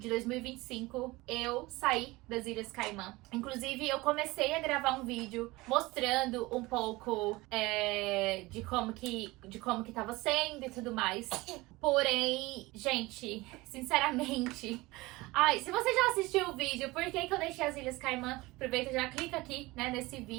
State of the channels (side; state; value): left; quieter; 21.3 dB